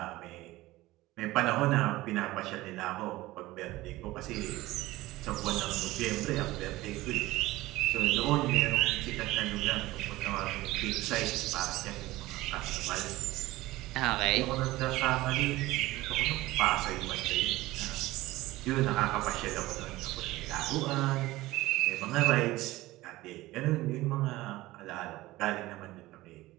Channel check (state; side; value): quieter; left; 18.2 dB